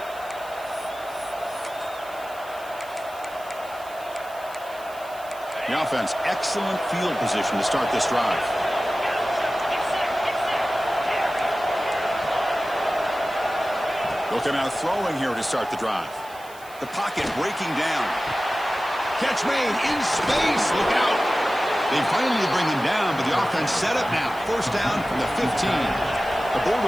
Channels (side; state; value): right; noise; hiss, 21 dB below the sound